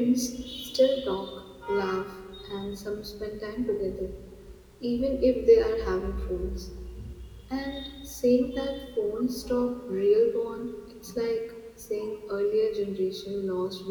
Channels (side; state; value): both; identical; correlation 1.00